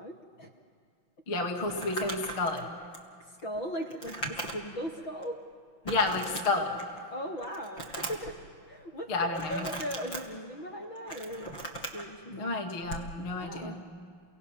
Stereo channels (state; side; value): late; right; 5.9 ms